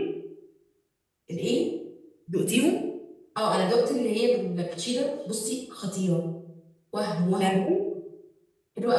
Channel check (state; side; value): identical; both; correlation 1.00